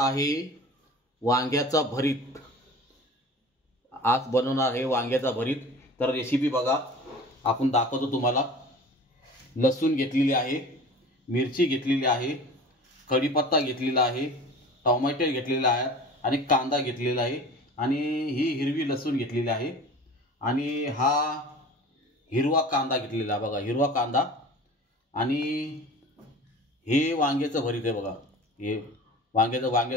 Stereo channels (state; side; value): normal; both; correlation 0.40